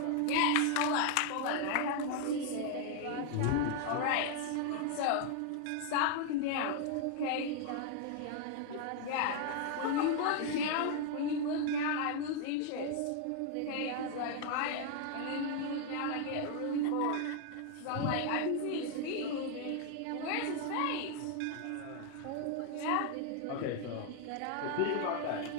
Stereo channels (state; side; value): different; both; correlation 0.00